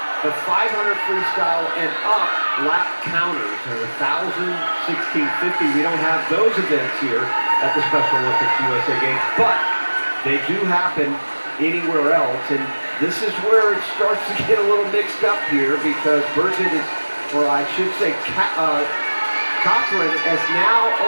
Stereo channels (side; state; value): both; inverted; correlation -1.00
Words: the 500 freestyle and up lap counters. And 1,000, 1650, we don't have those events here at the Special Olympics USA Games, but they do happen anywhere else. And this is where it starts to get a little mixed up here, because Burgett is, or I should say Cothran has now